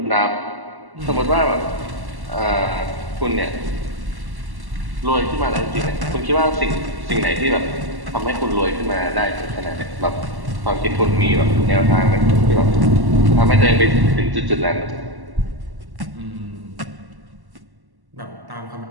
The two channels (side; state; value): left; late; 1.1 ms